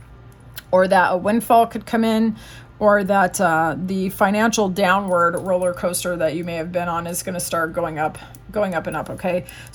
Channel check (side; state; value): both; identical; correlation 1.00